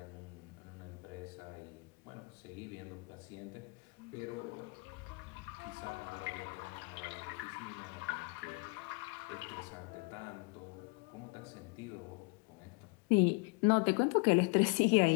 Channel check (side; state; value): right; quieter; 30.7 dB